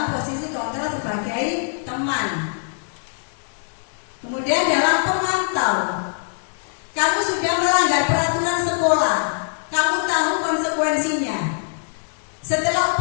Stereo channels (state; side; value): silent; right; digital silence